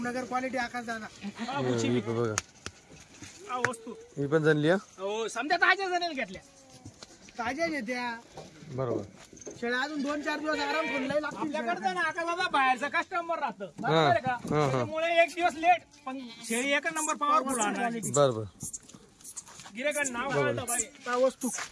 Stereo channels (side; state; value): both; identical; correlation 1.00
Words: क्वालिटी आकाश दादा बघा वस्तू ही पण झाली हो समजा ताज्या जाणेल घेतल्या ताज्या घेत्या बरोबर शेळ्या अजून 2-4 दिवस आराम करून आपल्याकडे ना आका दादा बाहेरचा कस्टमर राहतं त्यामुळे एक दिवस लेट पण शेळी एक नंबर पॉवरफुल आणणार बरोबर गिरेकड नाव घालतं पाहिजे वस्तू